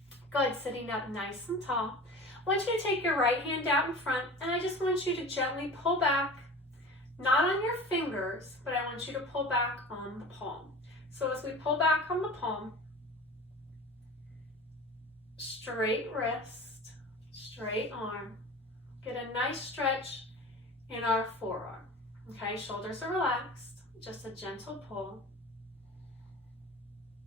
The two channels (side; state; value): both; normal; correlation 0.37